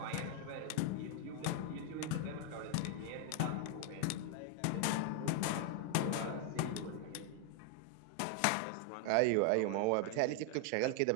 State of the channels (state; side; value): different; both; correlation 0.00